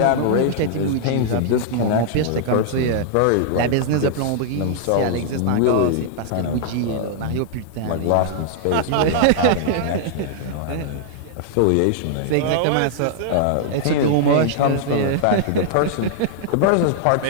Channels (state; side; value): different; both; correlation -0.01